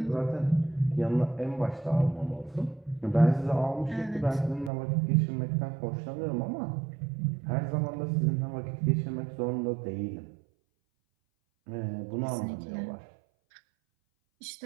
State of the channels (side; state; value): left; drops out; at 4.7 s